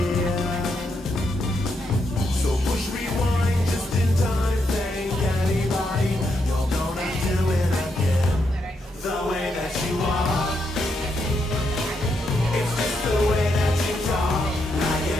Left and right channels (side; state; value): both; normal; correlation 0.80